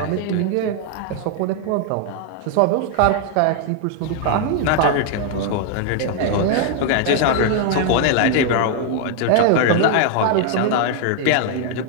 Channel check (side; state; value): both; different; correlation 0.00